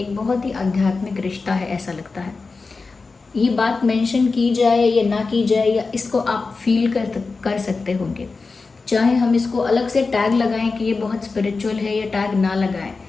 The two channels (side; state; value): right; quieter; 4.1 dB